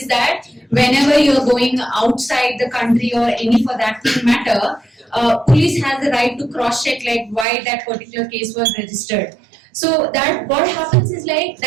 that whenever you're going outside the country or any for that matter, police has the right to cross check like why that particular case was registered. So that what happens is like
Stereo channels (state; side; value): drops out; left; at 7.5 s